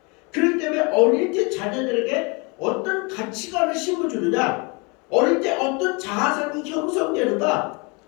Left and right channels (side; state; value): right; quieter; 30.2 dB